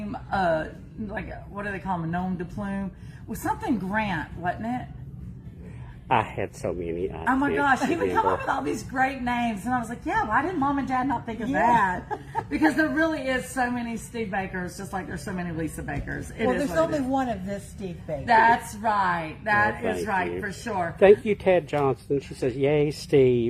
like, what do they call him, a gnome de plume? With something Grant, wasn't it? I had so many. Oh my gosh, he would come up with all these great names, and I was like, yeah, why didn't Mom and Dad not think of that? Because there really is so many Steve Bakers, just like there's so many Lisa Bakers. Well, there's only one of this Steve Baker. That's right. That is thank right, you. for sure. Thank you, Ted Johnson. She says, yay,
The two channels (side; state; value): both; identical; correlation 1.00